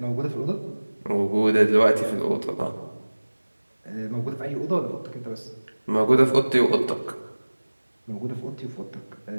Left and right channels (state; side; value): inverted; both; correlation -1.00